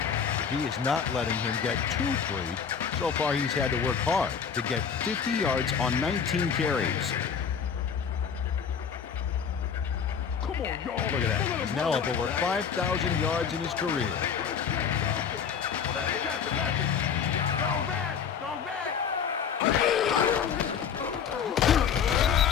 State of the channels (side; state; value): right; quieter; 7.1 dB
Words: he is not letting him get too free. So far, he's had to work hard to get 50 yards on 19 carries. Come on, y'all. Look at that. He's now up over 5,000 yards in his career. Go back!